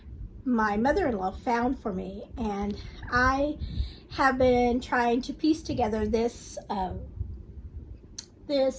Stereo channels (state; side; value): identical; both; correlation 1.00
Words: my mother-in-law found for me, and I have been trying to piece together this